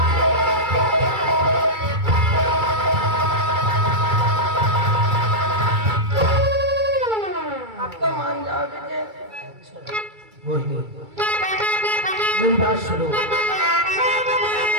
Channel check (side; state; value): left; late; 2.3 ms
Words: बोलिए, मेरी बात सुनो।